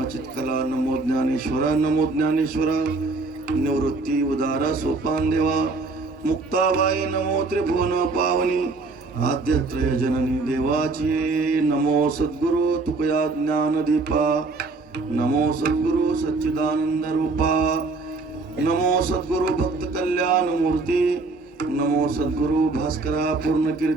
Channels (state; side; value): quieter; left; 3.6 dB